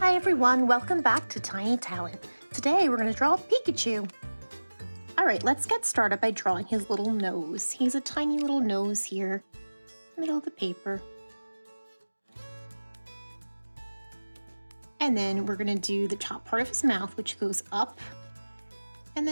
everyone, welcome back to Tiny Talent. Today we're going to draw Pikachu. Alright, let's get started by drawing his little nose. He's a tiny little nose here, middle of the paper. And then we're going to do the top part of his mouth, which goes up and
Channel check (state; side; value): inverted; both; correlation -1.00